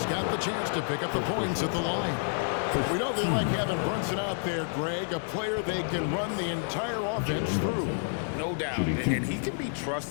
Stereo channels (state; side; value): silent; right; digital silence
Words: got the chance to pick up the points at the line. We know they like having Brunson out there, Greg, a player they can run the entire offense through. No doubt, and he can be